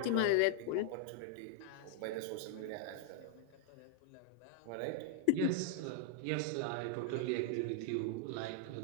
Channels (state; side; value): different; both; correlation 0.00